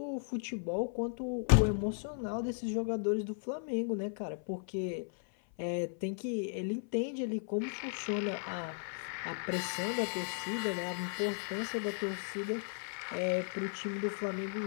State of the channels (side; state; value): right; silent; 54 dB below the other